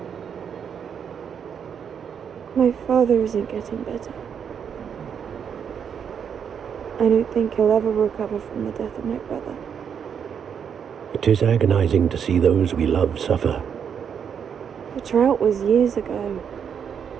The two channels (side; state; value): left; quieter; 7.6 dB